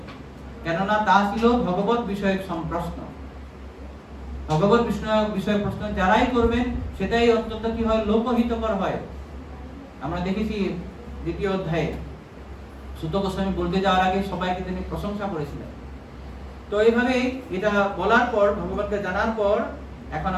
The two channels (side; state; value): both; identical; correlation 1.00